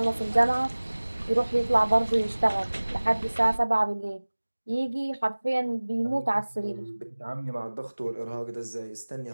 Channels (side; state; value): both; inverted; correlation -1.00